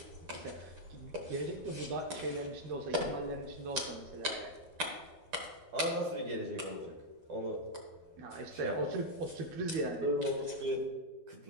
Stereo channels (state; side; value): late; left; 12 ms